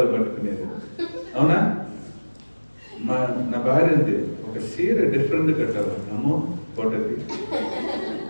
పట్టుకునేది. అవునా? నా భార్య ఉంది, ఒక చీర డిఫరెంట్ కట్టాలి, అమ్మో ఫోటోకి,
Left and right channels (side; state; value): both; inverted; correlation -1.00